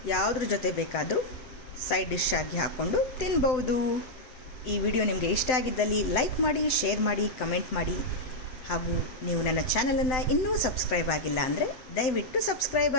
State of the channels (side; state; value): right; late; 7.8 ms